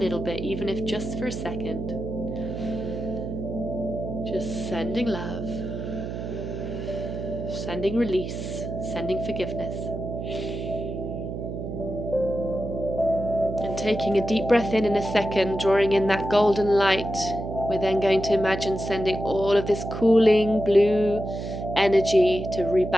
bit, even if just for a second. Just sending love, sending release, sending forgiveness. And taking a deep breath in a second, drawing in that golden light, we're then going to imagine sending all of this cooling blue energy to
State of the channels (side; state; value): right; noise; hum, 6 dB below the sound